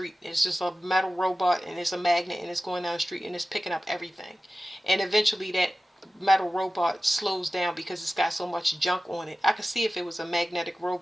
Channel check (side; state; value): both; normal; correlation 0.95